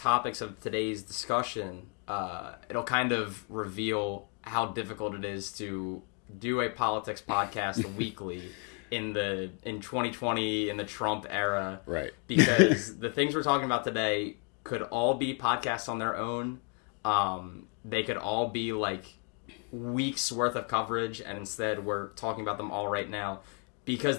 of today's discussion, it'll kind of reveal how difficult it is to do a politics podcast weekly in 2020 in the Trump era. Right. Because the things we're talking about today could all be podcasts on their own. They could all be like weeks worth of coverage, and instead we're talking about them all right now because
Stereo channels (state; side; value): quieter; right; 37.8 dB